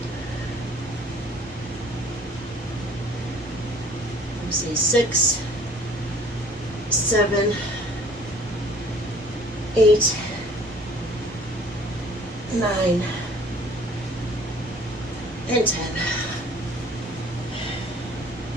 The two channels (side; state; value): both; normal; correlation 0.53